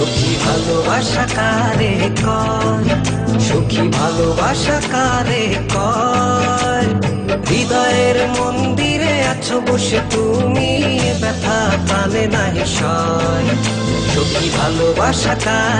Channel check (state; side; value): identical; both; correlation 1.00